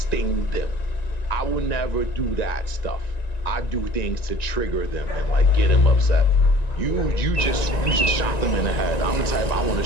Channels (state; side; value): late; right; 1.9 ms